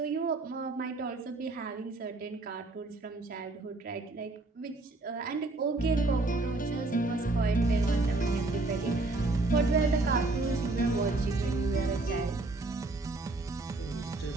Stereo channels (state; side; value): quieter; left; 3.1 dB